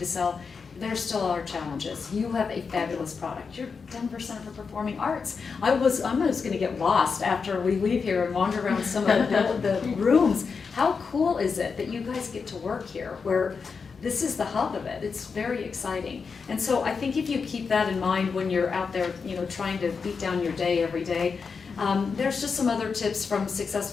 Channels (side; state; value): right; quieter; 5.3 dB